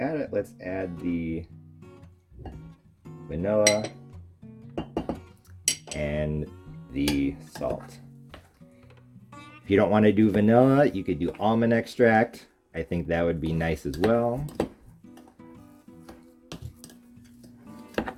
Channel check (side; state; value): both; identical; correlation 1.00